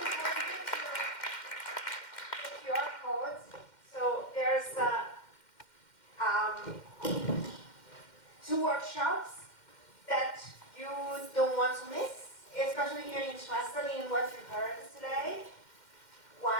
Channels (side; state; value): right; late; 2.1 ms